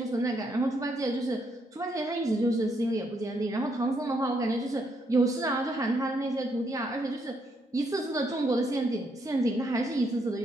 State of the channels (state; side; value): normal; both; correlation 0.75